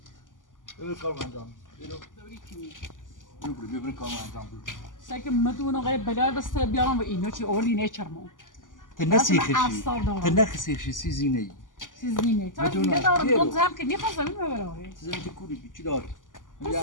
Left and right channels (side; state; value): right; late; 0.88 ms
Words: ببر کار انجام ببر کار انجام بده سعی مدون آقای بلال بس بیارم و اینو چی اولی نیچرمون. تنسی خشی. تنخسی خشی سیزینه ای سیزینه. تا بدون دیگه دارم گیرو. دون زم که میخوام زمین ببرم. سیزینه که کوری چی داره